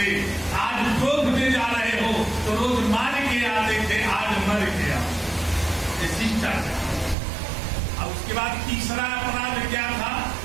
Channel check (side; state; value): left; drops out; at 7.2 s